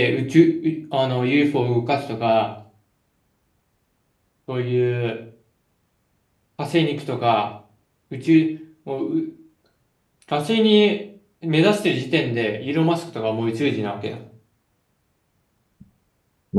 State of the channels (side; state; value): both; identical; correlation 1.00